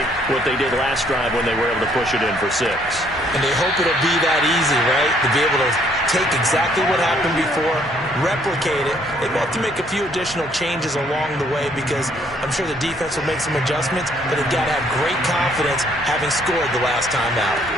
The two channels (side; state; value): both; normal; correlation 0.65